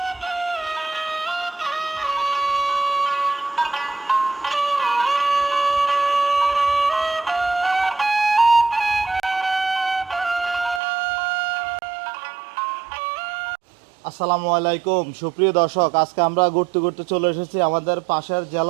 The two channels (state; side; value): drops out; left; at 10.8 s